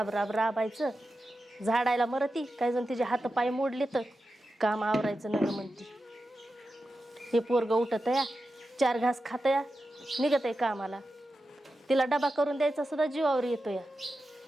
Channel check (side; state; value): both; normal; correlation 0.91